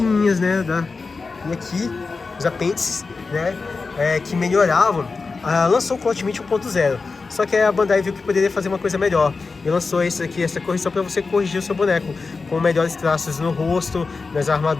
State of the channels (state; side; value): quieter; right; 4.3 dB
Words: né, E aqui, os apêndices, né, que melhoravam. Lançou o Cloth Meat 1.0. Só que a Bandai viu que poderia fazer uma coisa melhor e lançou essa correção para você corrigir o seu boneco com melhores traços no rosto, nas